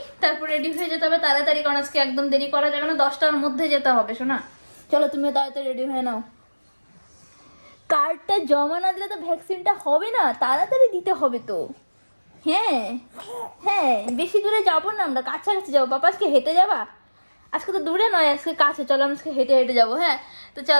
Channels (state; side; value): inverted; both; correlation -1.00